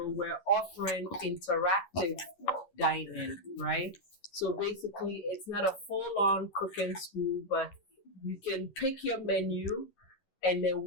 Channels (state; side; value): late; right; 11 ms